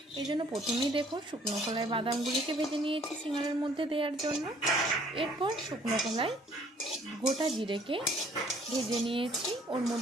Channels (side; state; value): both; normal; correlation 0.59